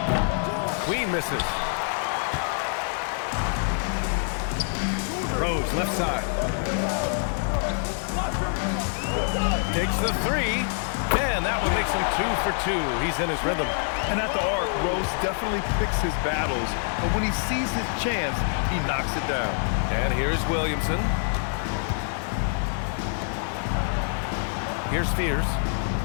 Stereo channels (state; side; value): silent; right; 60 dB below the other